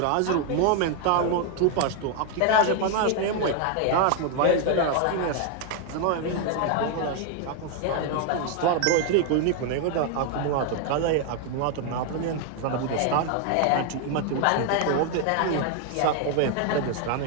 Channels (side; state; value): both; different; correlation 0.01